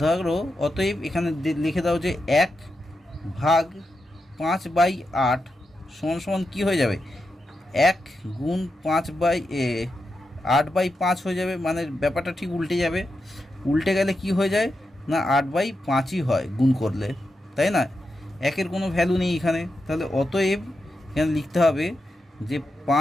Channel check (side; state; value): both; normal; correlation 0.87